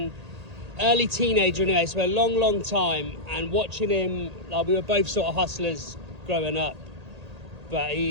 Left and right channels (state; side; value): late; left; 1.8 ms